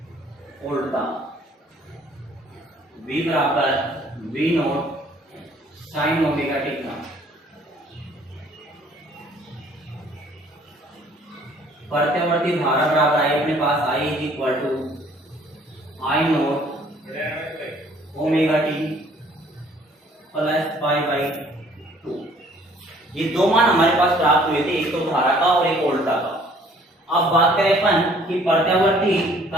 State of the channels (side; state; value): both; normal; correlation 0.58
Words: वोल्टता V बराबर V naught sine omega t था। प्रत्यावर्ती धारा बराबर आई अपने पास I is equal to I naught omega T plus pi by 2। ये दो मान हमारे पास प्राप्त हुए थे, एक तो धारा का और एक वोल्टता का। अब बात करें अपन कि प्रत्यावर्ती